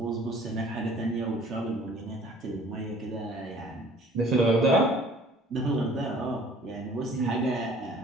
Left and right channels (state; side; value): normal; both; correlation 0.52